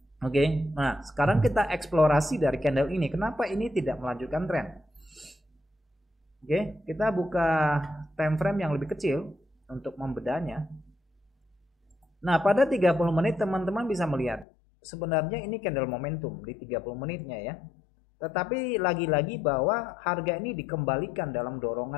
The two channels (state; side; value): drops out; right; at 14.5 s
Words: Oke, nah sekarang kita eksplorasi dari candle ini. Kenapa ini tidak melanjutkan tren? Oke, kita buka time frame yang lebih kecil untuk membedanya. Nah, pada 30 menit teman-teman bisa melihat sebenarnya ini candle momentum di 30 menitnya ya. Tetapi lagi-lagi bahwa harga ini dikembalikan dalam